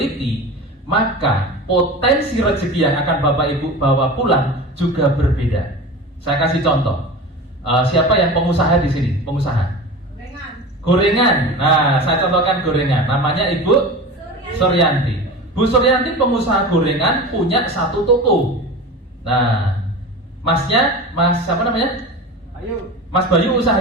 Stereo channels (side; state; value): both; normal; correlation 0.31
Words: maka potensi rezeki yang akan Bapak Ibu bawa pulang juga berbeda. Saya kasih contoh. Siapa yang pengusaha di sini? Pengusaha? Gorengan. Nah, saya contohkan gorengan. Namanya Ibu Suryanti. Bu Suryanti pengusaha gorengan, punya 1 toko. Nah, masnya, Mas siapa namanya? Mas Bayu